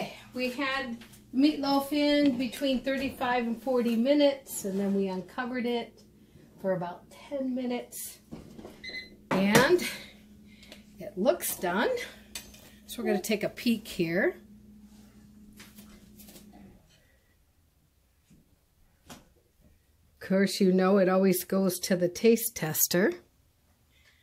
we had meatloaf in between 35 and 40 minutes, and then we uncovered it for about 10 minutes. And it looks done. So we're going to take a peek here. Of course, you know it always goes to the taste tester,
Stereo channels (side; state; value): both; identical; correlation 1.00